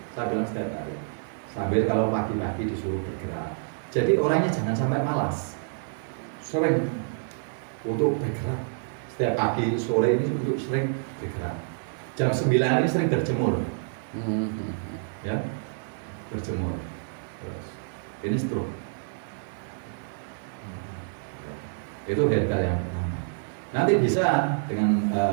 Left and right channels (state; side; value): silent; left; digital silence